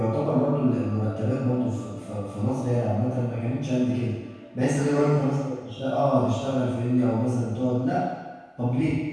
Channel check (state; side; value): identical; both; correlation 1.00